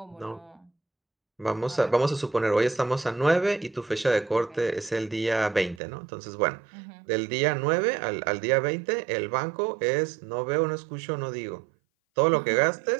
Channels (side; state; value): left; drops out; at 5.8 s